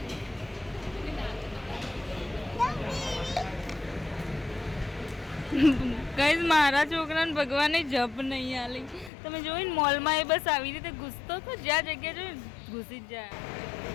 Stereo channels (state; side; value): drops out; right; at 9.1 s